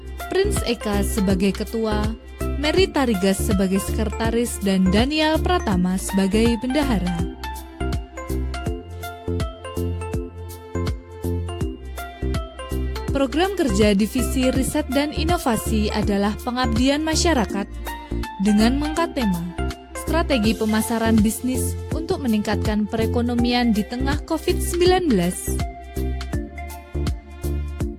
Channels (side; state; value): both; identical; correlation 1.00